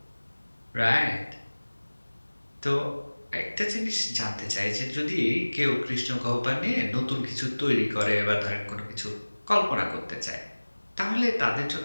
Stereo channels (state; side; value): inverted; both; correlation -1.00